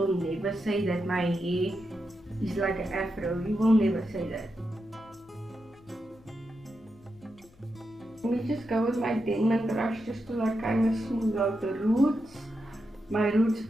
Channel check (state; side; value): noise; left; hum, 27 dB below the sound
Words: never say that my hair is like an afro. You will never say that. Let me just go with my Denman brush just to like kind of smooth out the roots. My roots